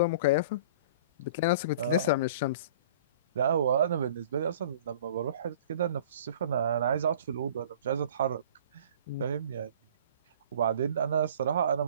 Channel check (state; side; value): inverted; both; correlation -0.46